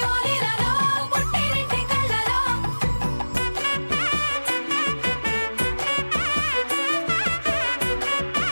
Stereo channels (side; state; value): both; inverted; correlation -1.00